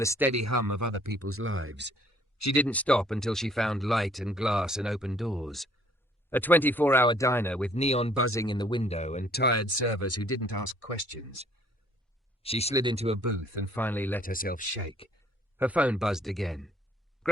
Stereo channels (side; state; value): both; normal; correlation 0.61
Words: the steady hum of other people's lives. She didn't stop until she found light and glass and open doors. A 24-hour diner with neon buzzing in the window and tired servers who didn't ask questions. She slid into a booth and finally let herself shake. Her phone buzzed again.